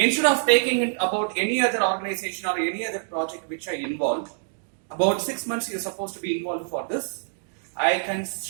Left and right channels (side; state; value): left; silent; digital silence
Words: of taking it about any other organization or any other project which I involved, about 6 months you're supposed to be involved for this. I can